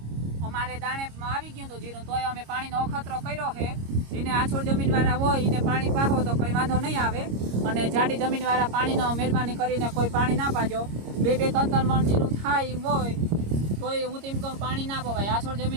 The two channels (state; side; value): late; left; 26 ms